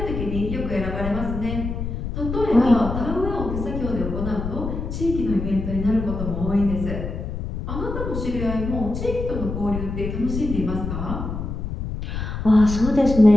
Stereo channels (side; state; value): left; noise; rumble, 5 dB below the sound